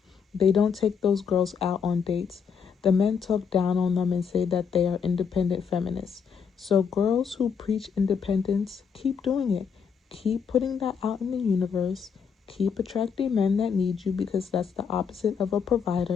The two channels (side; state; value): right; quieter; 6.6 dB